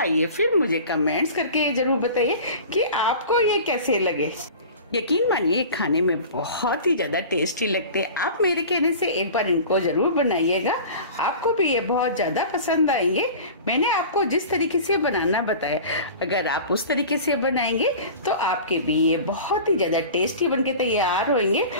फिर मुझे कमेंट्स करके जरूर बताइए कि आपको ये कैसे लगे। यकीन मानिए खाने में बहुत ही ज्यादा टेस्टी लगते हैं। आप मेरे कहने से एक बार इनको जरूर बनाइएगा, आपको भी ये बहुत ज्यादा पसंद आएंगे। मैंने आपको जिस तरीके से बनाना बताया, अगर आप उस तरीके से बनाएंगे तो आपके भी ये बहुत ही ज्यादा टेस्टी बनके तैयार होंगे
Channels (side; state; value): both; inverted; correlation -0.38